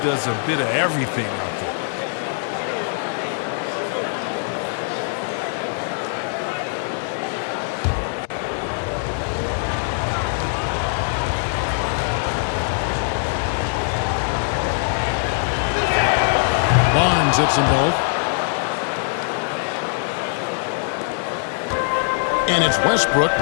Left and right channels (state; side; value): silent; right; digital silence